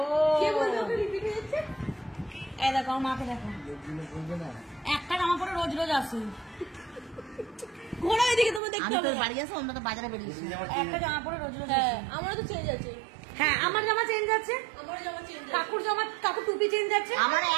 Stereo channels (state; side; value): drops out; left; at 8.6 s